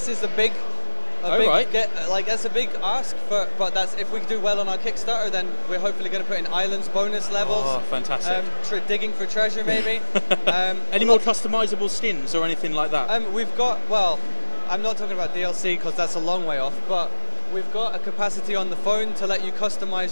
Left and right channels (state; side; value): inverted; both; correlation -1.00